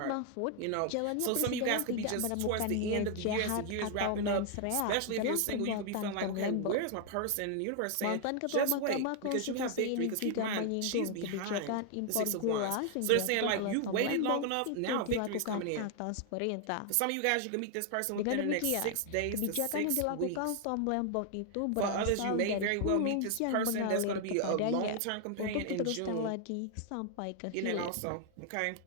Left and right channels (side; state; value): both; different; correlation 0.00